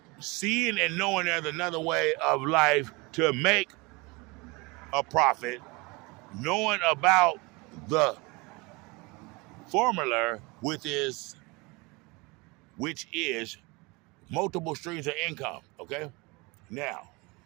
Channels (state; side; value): quieter; left; 26.1 dB